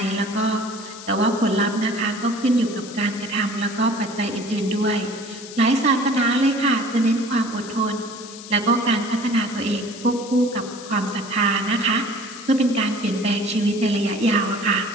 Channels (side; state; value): left; noise; hiss, 15 dB below the sound